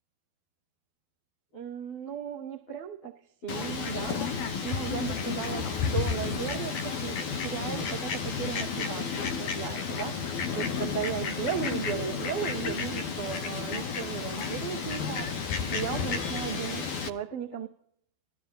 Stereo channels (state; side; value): late; right; 12 ms